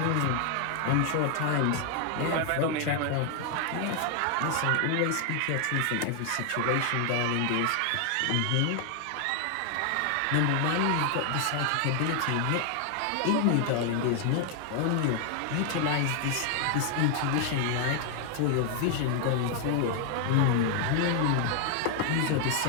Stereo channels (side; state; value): both; different; correlation 0.00